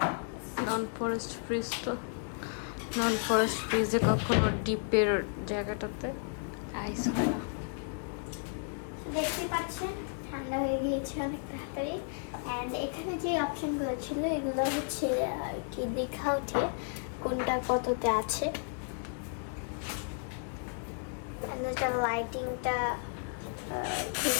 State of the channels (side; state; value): right; silent; 56 dB below the other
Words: ফ্রিজ। তো নন ফরেস্ট ফ্রিজে কখনো ডিপের জায়গাটাতে আইস হয় না। দেখতে পাচ্ছেন ঠান্ডা হয়ে গিয়েছে অনেক তাড়াতাড়ি। অ্যান্ড এখানে যে অপশনগুলো ছিল এগুলো হচ্ছে আর কি দেখা ওঠে কোনটা কততে আছে। এটা লাইটিংটা